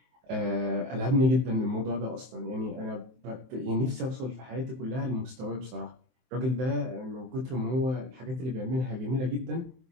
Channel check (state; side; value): late; left; 23 ms